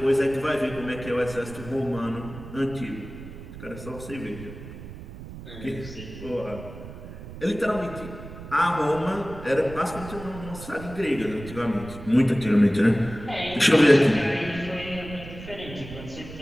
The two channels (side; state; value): right; noise; rumble, 13 dB below the sound